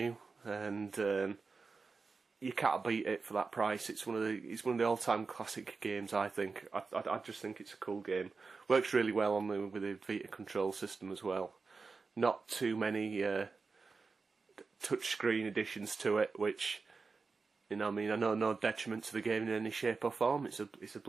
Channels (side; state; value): left; quieter; 4.4 dB